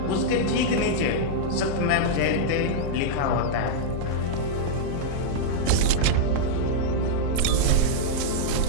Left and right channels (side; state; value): both; different; correlation -0.02